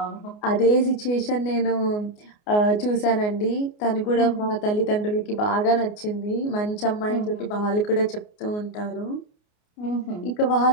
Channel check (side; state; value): right; late; 29 ms